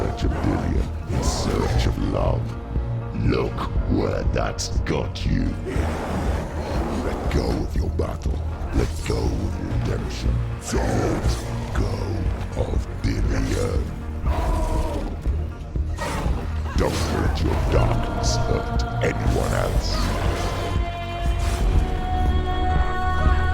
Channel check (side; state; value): both; identical; correlation 1.00